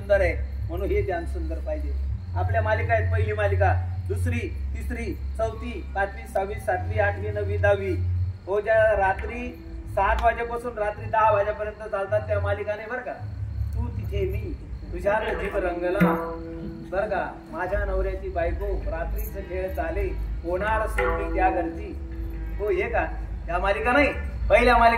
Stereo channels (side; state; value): both; identical; correlation 1.00